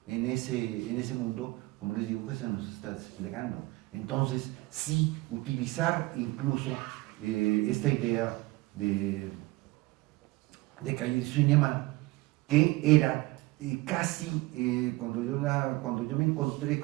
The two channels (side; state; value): left; quieter; 21.2 dB